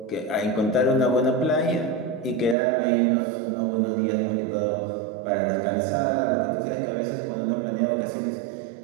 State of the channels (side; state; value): left; drops out; at 2.6 s